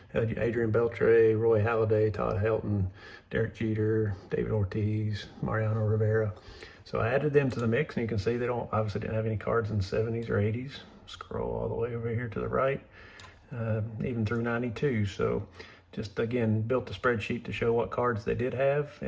Adrian Beltre, Roy Halladay, Todd Helton, Derek Jeter, David Ortiz, Mariano Rivera. So I added them to the mix, and you can see they obviously didn't have any cards in the 70s or 80s. Scroll all the way over here to the right, even through 92. So just, again, built a spreadsheet to show what cards they did have,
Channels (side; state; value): both; identical; correlation 1.00